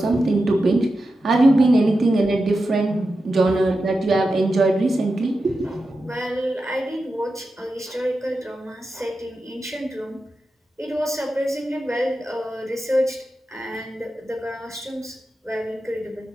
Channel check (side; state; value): both; normal; correlation 0.90